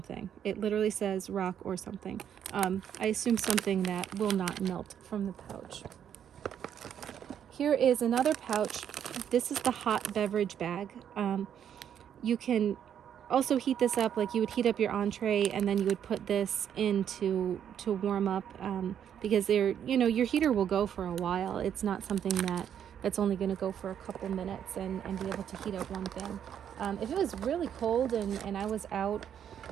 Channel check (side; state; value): left; quieter; 9.1 dB